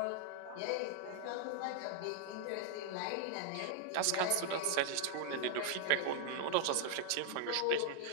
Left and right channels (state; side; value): different; both; correlation 0.00